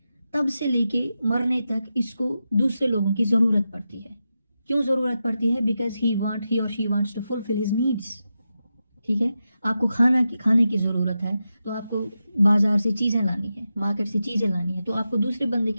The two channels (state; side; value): inverted; both; correlation -0.89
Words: तब से लेके मरने तक इसको दूसरे लोगों की ज़रूरत पड़ती है। क्यों ज़रूरत पड़ती है? बिकॉज ही और she wants to fulfil his needs. ठीक है, आपको खाने की ज़रूरत है तो आपको बाजार से चीज़ें लानी है, मार्केट से चीज़ें लानी है, तो आपको दूसरे बंदे